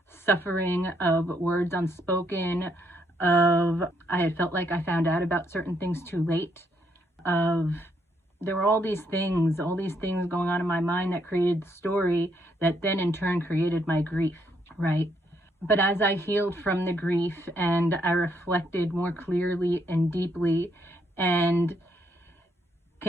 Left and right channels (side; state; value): both; normal; correlation 0.73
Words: suffering, of words unspoken, of I had felt like I found out about certain things too late, there were all these things going on in my mind that created the story that then in turn created my grief, right? But as I healed from the grief and I reflected more clearly and deeply and